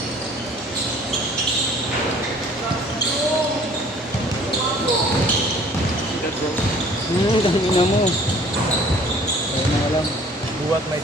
Dami na mo. Ayun na lang. Buwat may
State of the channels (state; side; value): normal; both; correlation 0.53